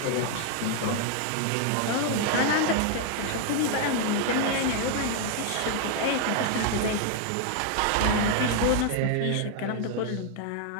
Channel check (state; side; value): different; both; correlation 0.00